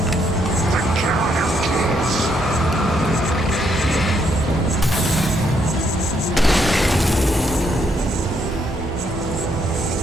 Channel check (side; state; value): both; normal; correlation 0.74